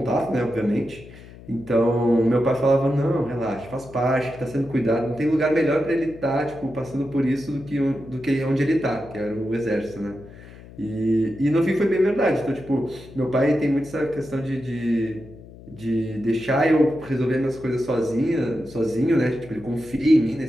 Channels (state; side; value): noise; left; hum, 18 dB below the sound